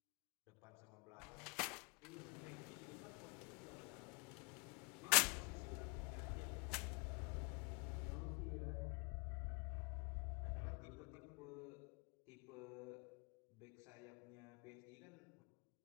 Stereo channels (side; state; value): right; quieter; 32.1 dB